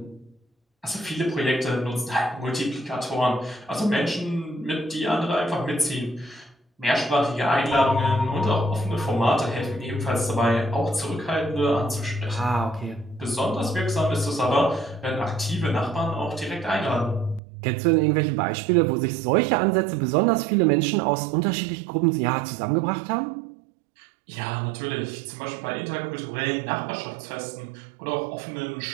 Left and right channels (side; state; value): left; drops out; at 17.4 s